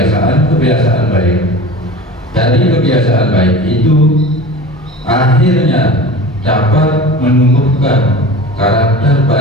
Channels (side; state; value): both; normal; correlation 0.35